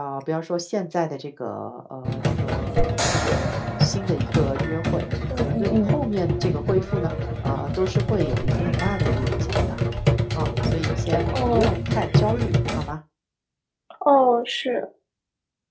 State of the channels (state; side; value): identical; both; correlation 1.00